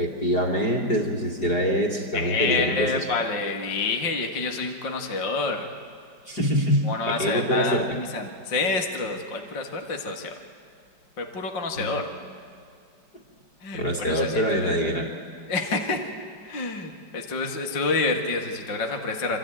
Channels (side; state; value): right; late; 5.5 ms